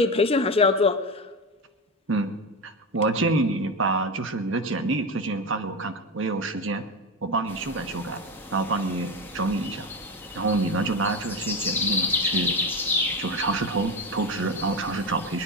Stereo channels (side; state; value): both; normal; correlation 0.18